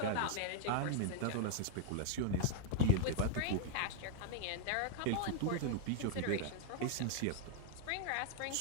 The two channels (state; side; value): different; both; correlation 0.00